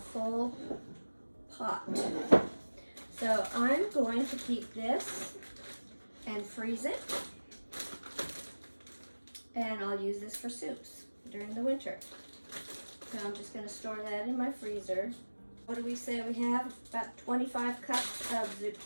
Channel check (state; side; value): inverted; both; correlation -1.00